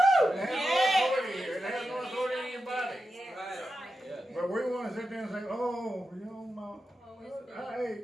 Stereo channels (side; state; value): both; normal; correlation 0.90